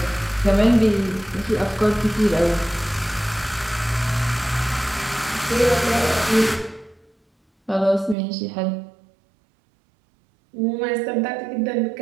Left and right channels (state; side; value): drops out; left; at 8.2 s